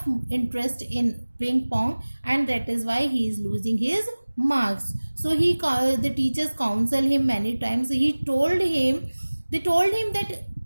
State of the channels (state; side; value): inverted; both; correlation -1.00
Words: interest in ping pong, and that is why he is losing his marks. So the teachers counsel him many times. They told him that